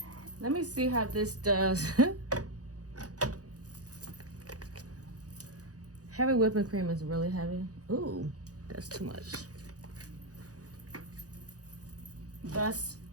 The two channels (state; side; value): late; left; 0.67 ms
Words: Let me see how this does. Heavy whipping cream is really heavy. Ooh, that's too much. That's